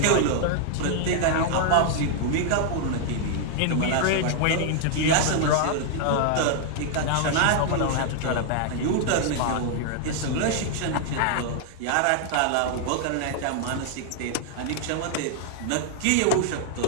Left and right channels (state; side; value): different; both; correlation 0.00